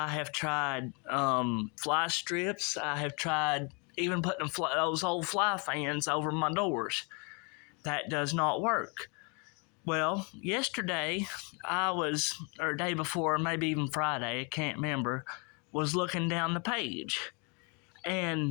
have tried fly strips. I have tried even putting those old fly fans over my doors. That does not work. Well, yesterday or day before, maybe even Friday, I can't remember, was looking down the page.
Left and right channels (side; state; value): right; quieter; 33.2 dB